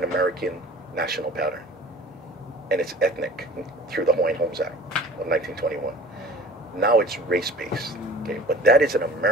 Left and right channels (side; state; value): both; normal; correlation 0.44